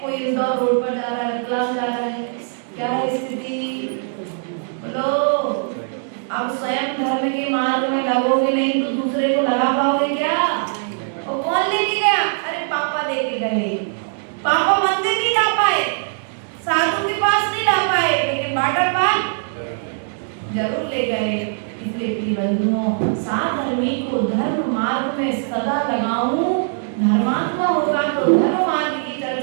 कोई इंदौर रोड पर जा रहा है, क्लास जा रहा है। क्या है स्थिति बोलो। अब स्वयं धर्म के मार्ग में लगोगे नहीं तो दूसरे को लगा पाओगे क्या? और कौन लेके गया? अरे पापा लेके गए, पापा मंदिर नहीं जा पाए, साधु के पास नहीं जा पाए, लेकिन वाटर पार्क जरूर ले गए। इसलिए प्रिय बंधुओं, साधर्मी को धर्म मार्ग में सदा लगाऊं, धर्मात्मा होगा तो धर्म मार्ग की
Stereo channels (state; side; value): silent; left; digital silence